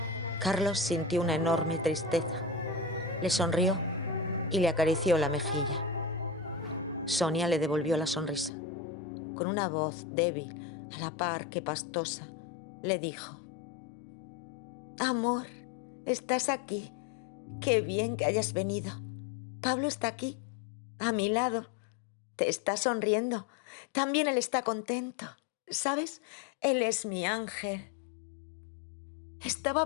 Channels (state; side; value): drops out; right; at 8.5 s